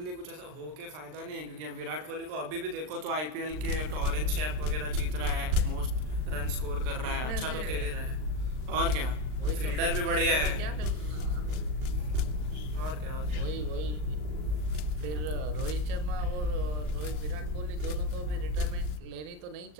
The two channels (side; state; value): left; late; 39 ms